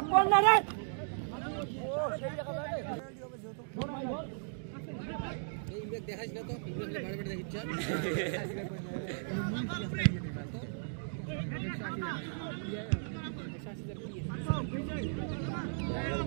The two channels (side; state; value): left; silent; digital silence